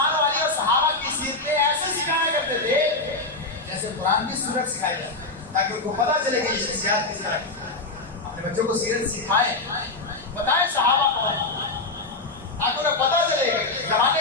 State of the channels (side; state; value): right; quieter; 3.2 dB